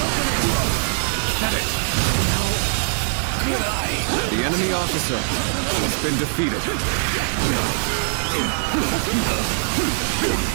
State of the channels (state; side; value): silent; left; 64 dB below the other